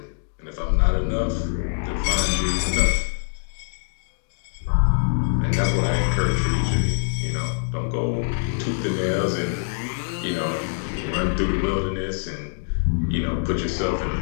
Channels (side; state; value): right; silent; digital silence